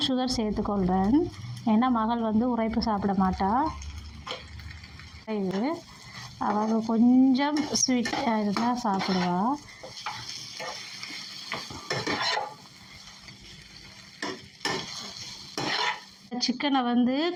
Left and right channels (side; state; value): both; identical; correlation 1.00